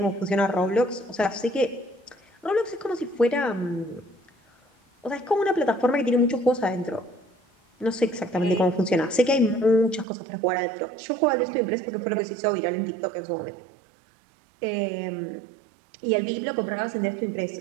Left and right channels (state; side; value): drops out; left; at 10.1 s